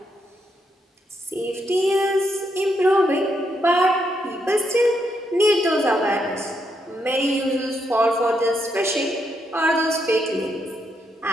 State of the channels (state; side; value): normal; both; correlation 0.79